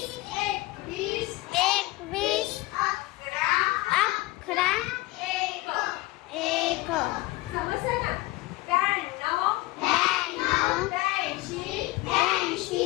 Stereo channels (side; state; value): right; quieter; 19.8 dB